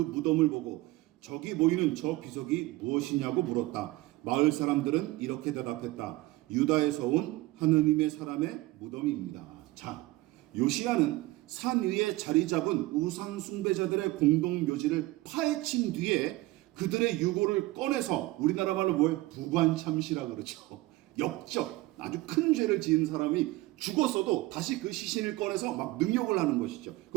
보고 저기 보이는 저 비석이 무엇이냐고 물었다. 마을 사람들은 이렇게 대답했다. 유다에서 온 하나님의 사람의 무덤입니다. 자, 요시야는 산 위에 자리 잡은 우상 숭배자들의 공동 묘지를 파헤친 뒤에 그들의 유골을 꺼내서 우리나라 말로 뭐예요? 부관참시라 그러죠. 역적, 아주 큰 죄를 지은 사람이 죽었어도 다시 그 시신을 꺼내서 막 능욕을 하는 것이죠.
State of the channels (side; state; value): left; quieter; 19.3 dB